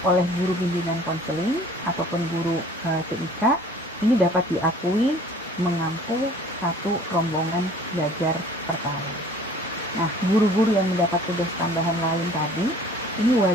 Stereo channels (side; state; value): both; normal; correlation 0.51